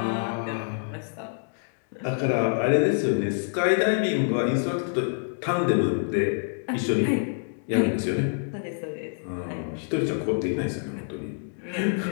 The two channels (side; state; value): right; silent; digital silence